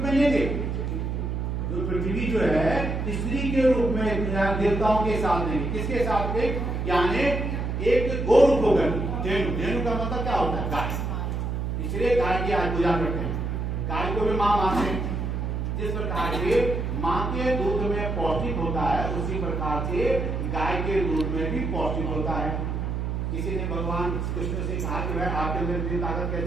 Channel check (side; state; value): right; noise; hum, 2 dB below the sound